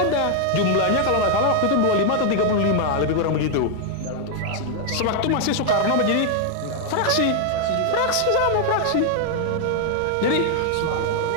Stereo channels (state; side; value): different; both; correlation 0.00